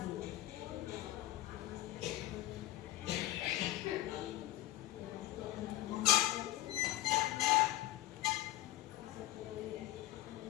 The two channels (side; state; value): right; quieter; 15.9 dB